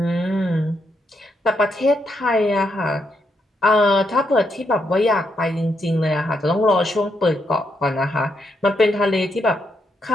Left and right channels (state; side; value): normal; both; correlation 0.79